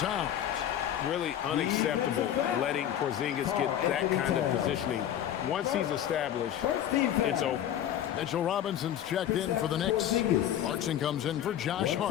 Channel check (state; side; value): quieter; right; 10.8 dB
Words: Really unacceptable letting Porzingis get that kind of positioning. Once he's established, it's over. Mitchell Robinson's checked in for the Knicks. Clarkson comes in for Josh